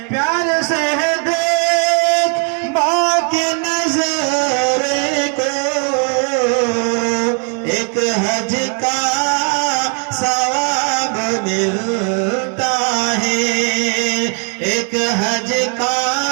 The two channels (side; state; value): left; quieter; 38.6 dB